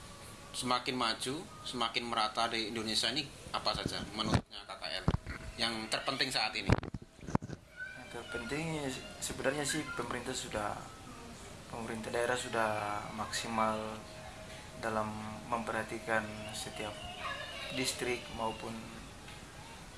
semakin maju, semakin merata di Indonesia ini apa saja menurutnya KKL yang terpenting saat ini? Yang terpenting sebenarnya sih pemerintah daerah sudah maksimal dalam memperhatikan setiap distrik maupun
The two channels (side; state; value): both; identical; correlation 1.00